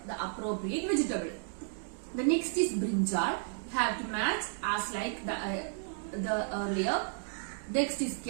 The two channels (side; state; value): left; silent; digital silence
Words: the appropriate vegetable. The next is brinjal. You have to match as like the earlier. Next is